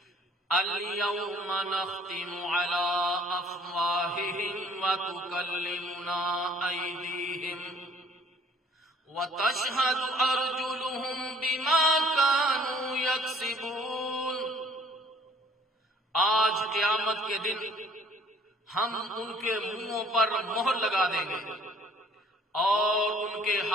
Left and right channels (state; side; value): normal; both; correlation 0.57